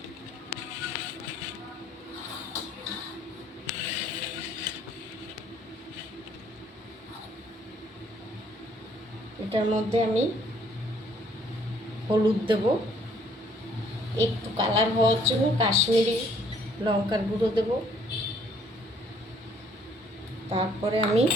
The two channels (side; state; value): both; normal; correlation 0.63